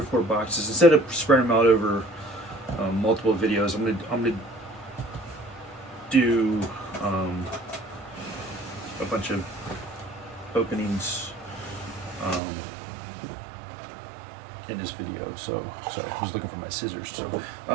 4 boxes. Instead of spreading them out over multiple videos, I'm gonna do a bunch of openings in this video. So sorry, I was looking for my scissors. So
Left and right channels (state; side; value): drops out; left; at 12.4 s